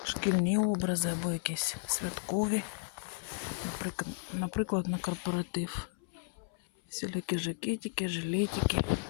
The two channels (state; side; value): silent; right; 55 dB below the other